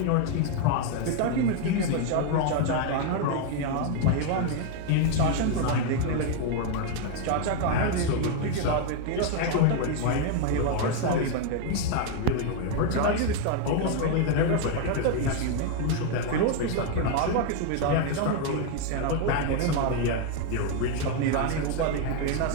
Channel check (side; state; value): both; different; correlation 0.01